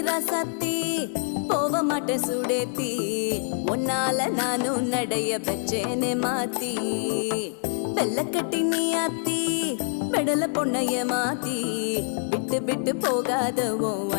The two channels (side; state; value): right; silent; 56 dB below the other